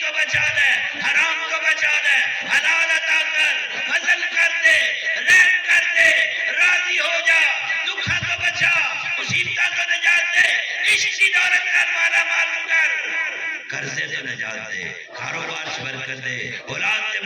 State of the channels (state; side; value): identical; both; correlation 1.00